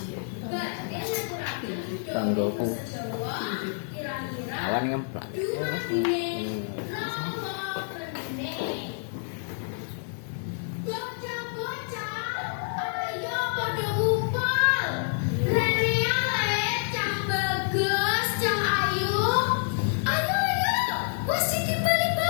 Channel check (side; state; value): right; silent; digital silence